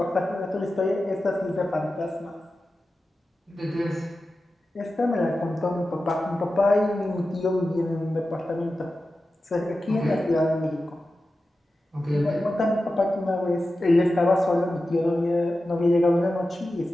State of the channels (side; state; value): both; normal; correlation 0.93